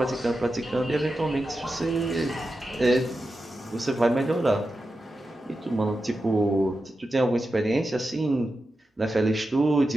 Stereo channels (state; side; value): normal; both; correlation 0.91